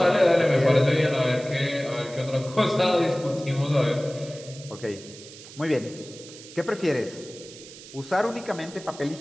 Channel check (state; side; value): noise; right; hiss, 17 dB below the sound